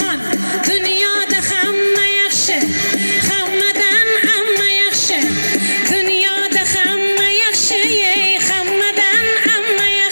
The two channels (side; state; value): both; inverted; correlation -1.00